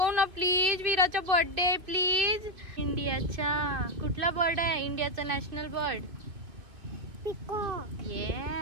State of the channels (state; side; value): late; left; 2.4 ms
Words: ना प्लीज. वीराचा birthday please. इंडियाचा कुठला बर्ड आहे? इंडियाचा national bird peacock.